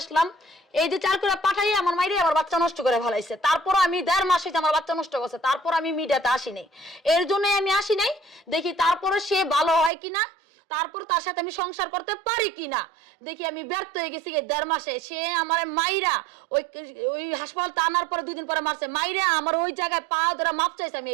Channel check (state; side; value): drops out; left; at 9.9 s